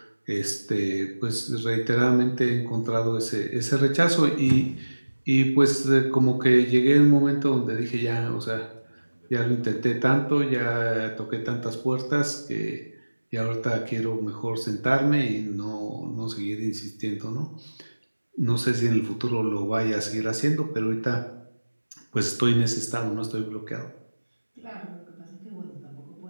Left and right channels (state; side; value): inverted; both; correlation -1.00